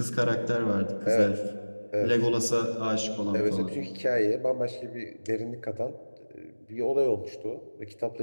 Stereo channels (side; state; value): both; inverted; correlation -1.00